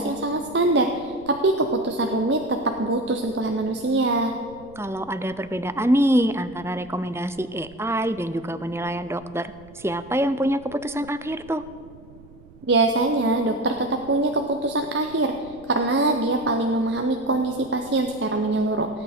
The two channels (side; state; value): right; noise; rumble, 22 dB below the sound